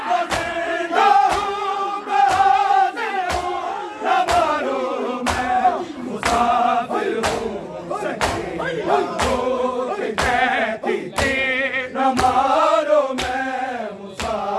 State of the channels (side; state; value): both; identical; correlation 1.00